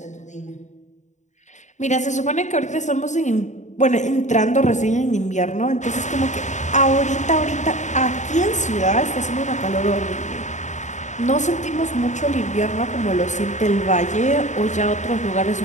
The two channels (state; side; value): late; right; 0.35 ms